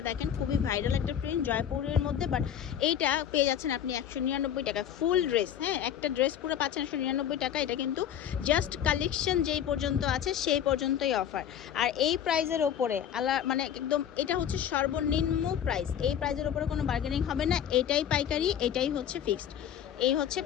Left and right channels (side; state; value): right; quieter; 9.6 dB